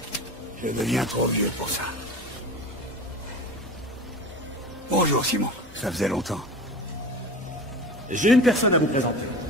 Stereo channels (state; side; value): normal; both; correlation 0.33